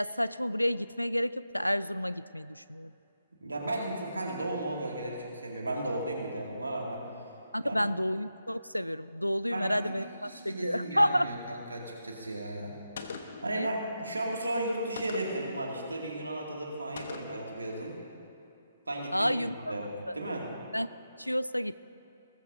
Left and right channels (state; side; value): inverted; both; correlation -0.88